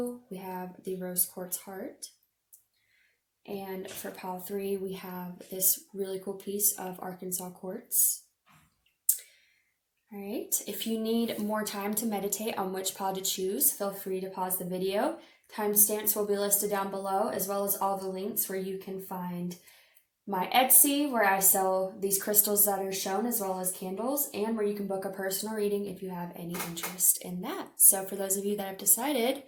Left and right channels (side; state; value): both; identical; correlation 1.00